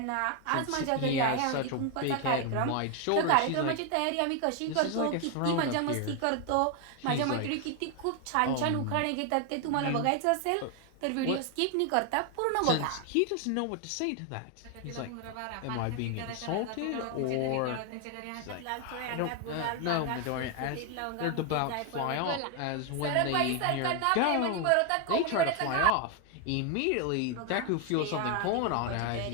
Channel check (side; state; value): both; different; correlation 0.01